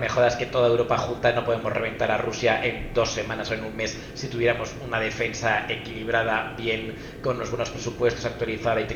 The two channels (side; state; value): both; identical; correlation 1.00